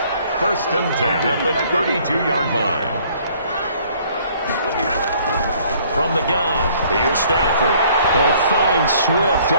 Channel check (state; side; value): inverted; both; correlation -0.59